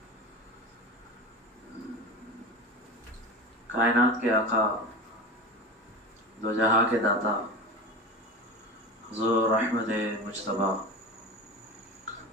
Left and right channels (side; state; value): both; normal; correlation 0.28